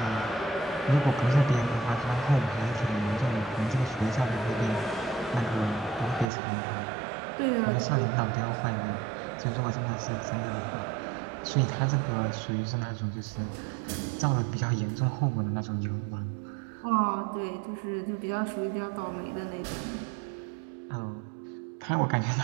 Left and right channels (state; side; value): drops out; left; at 6.2 s